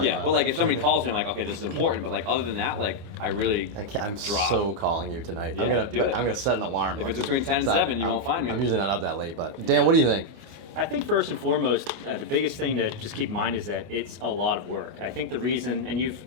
Yeah, but like if somebody calls me, I'm like, okay, this is important. But like other than that, like I'm drop. so calling you tonight. Yeah, I'm gonna set an alarm. If it's between 10 and 7, you won't find me. I'm usually not up that late, but Dan, what do you think? I think first and foremost, the biggest thing to just keep in mind is that it's a lot of work. I think the reason, and you've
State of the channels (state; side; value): late; left; 24 ms